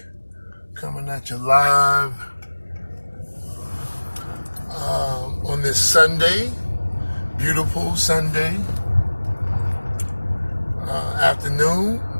coming at you live on this Sunday, beautiful Sunday afternoon,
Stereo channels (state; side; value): inverted; both; correlation -1.00